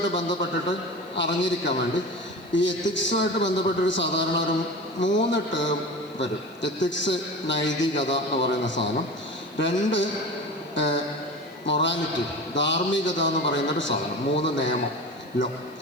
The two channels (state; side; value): noise; right; hiss, 29 dB below the sound